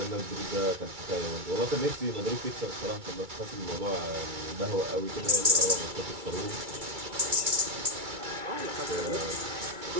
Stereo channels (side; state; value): left; late; 2.3 ms